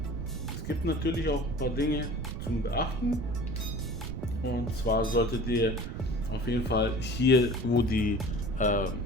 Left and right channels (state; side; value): noise; right; rumble, 6 dB below the sound